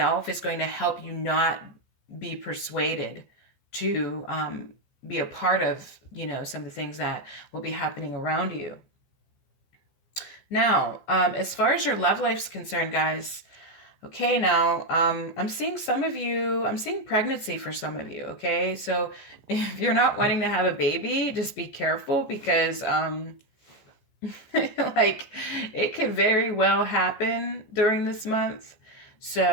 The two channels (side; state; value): right; late; 14 ms